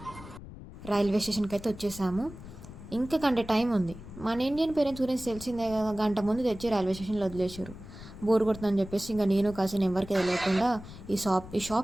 రైల్వే స్టేషన్కి అయితే వచ్చేసాము. ఇంకా గంట టైం ఉంది. మన ఇండియన్ పేరెంట్స్ గురించి తెలిసిందే కదా, గంట ముందు తెచ్చి రైల్వే స్టేషన్లో వదిలేసారు. బోర్ కొడుతుందని చెప్పేసి ఇంకా నేను కాసిన ఎవరికి తెలియకుండా ఈ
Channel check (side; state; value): left; noise; rumble, 15 dB below the sound